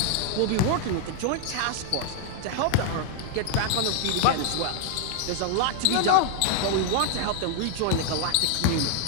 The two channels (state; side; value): different; both; correlation 0.00